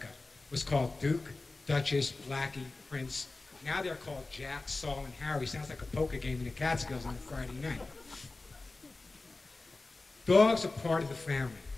was called Duke, Duchess, Blackie, Prince. Now they're called Jack, Saul, and Harry. Sounds like a poker game in the Catskills on a Friday night. Dogs are part of the family.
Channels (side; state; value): right; quieter; 3.4 dB